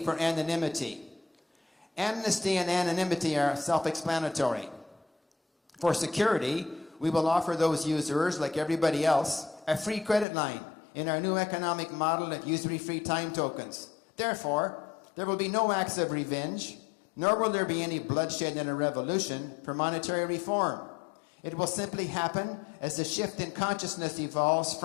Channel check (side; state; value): right; drops out; at 10.2 s